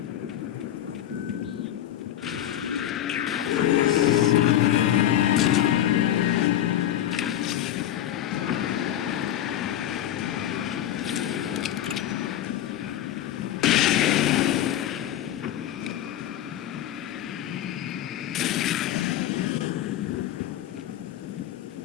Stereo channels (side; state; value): right; quieter; 11.7 dB